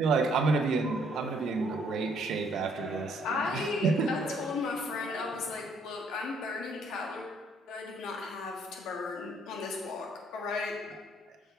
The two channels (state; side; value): normal; both; correlation 0.66